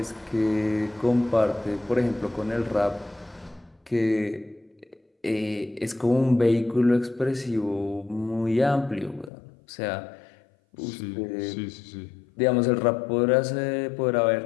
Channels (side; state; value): right; drops out; at 9.3 s